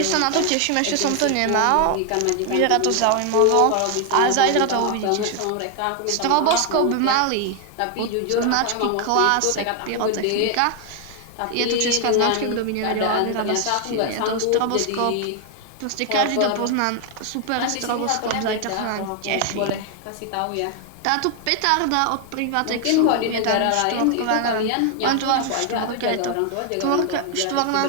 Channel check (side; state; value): both; different; correlation 0.00